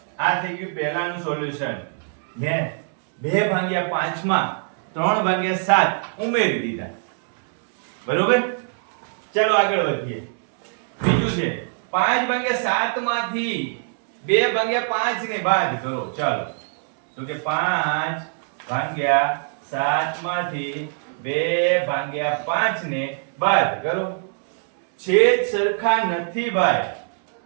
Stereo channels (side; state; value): left; silent; 63 dB below the other